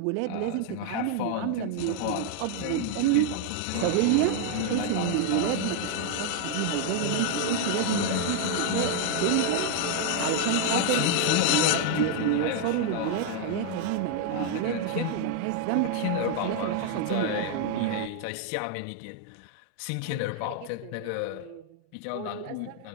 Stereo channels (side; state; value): both; different; correlation 0.00